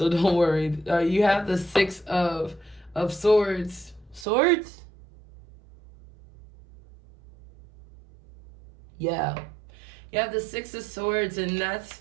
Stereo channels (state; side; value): drops out; left; at 4.2 s